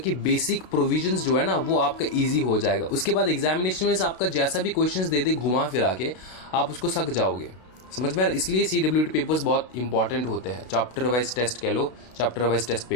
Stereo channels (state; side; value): late; right; 32 ms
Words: बेसिक प्रोविजंस जो है ना वो आपका इजी हो जाएगा। उसके बाद एग्जामिनेशन में आपका जैसा भी क्वेश्चंस दे दे घुमा फिरा के आप उसको सक जाओगे, समझ में आ रहा है। इसलिए CWT पेपर्स बहुत इंपॉर्टेंट होते हैं, चैप्टर वाइज टेस्ट कह लो, चैप्टर वाइज टेस्ट